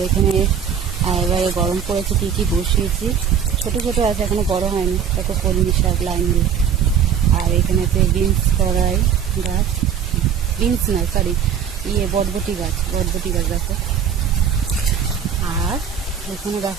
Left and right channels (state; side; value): quieter; left; 8.0 dB